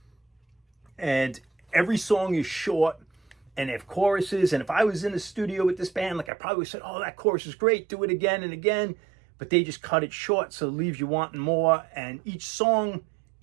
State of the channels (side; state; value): left; drops out; at 6.3 s